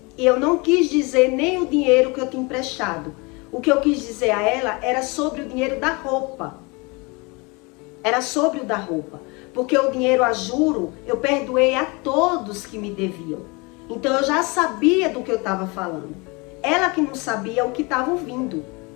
E eu não quis dizer nem o dinheiro que eu tinha emprestado. O que eu quis dizer a ela era sobre o dinheiro da roupa. Era sobre o da roupa. Porque o dinheiro a juro, eu perdoei a todos que me deviam. Então eu já sabia do que eu estava falando. Ela que não sabia o que estava ouvindo.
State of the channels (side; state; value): right; quieter; 27.9 dB